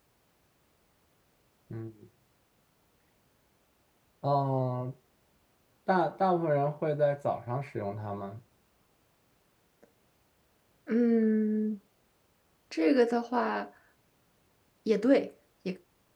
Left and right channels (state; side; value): identical; both; correlation 1.00